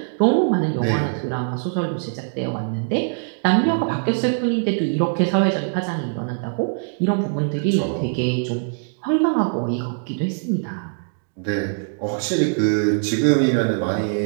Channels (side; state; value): left; silent; digital silence